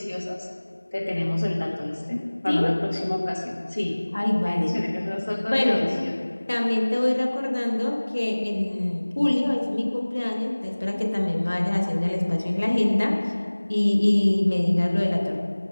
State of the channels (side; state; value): both; inverted; correlation -1.00